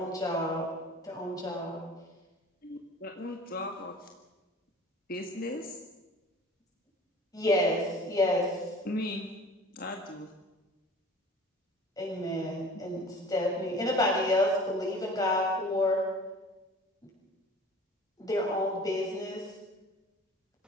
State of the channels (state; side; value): normal; both; correlation 0.44